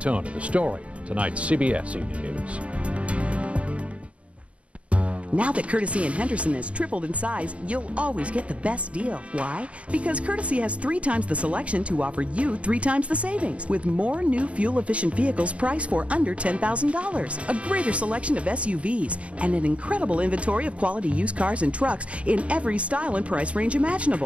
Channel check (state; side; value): late; left; 0.063 ms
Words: The story, tonight's CBS Evening News. Now that Courtesy and Henderson has tripled in size, you'll always get the best deal. Why? Because Courtesy has 3 times the selection to offer you 3 times the savings, with more new fuel-efficient vehicles priced for under $10,000, a greater selection of SUVs, and an incredible inventory of quality used cars and trucks in every style and price range